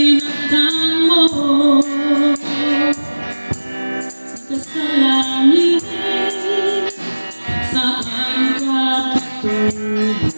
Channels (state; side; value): inverted; both; correlation -1.00